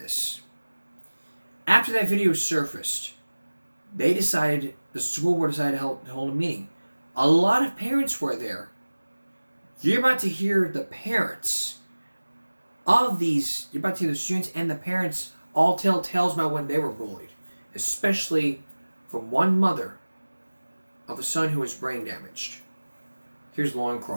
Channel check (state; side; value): inverted; both; correlation -1.00